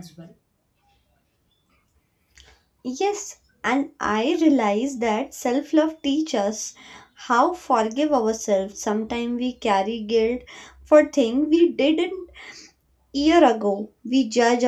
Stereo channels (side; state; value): both; identical; correlation 1.00